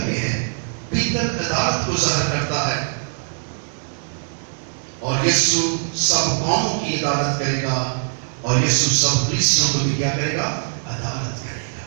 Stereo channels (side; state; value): left; silent; digital silence